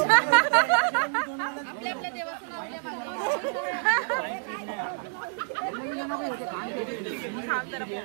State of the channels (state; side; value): silent; left; digital silence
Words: आपल्या देवाचं नाव